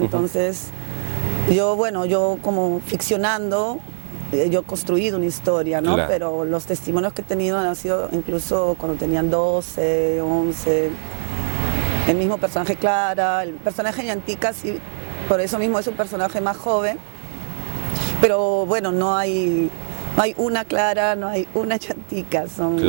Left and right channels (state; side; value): silent; left; 65 dB below the other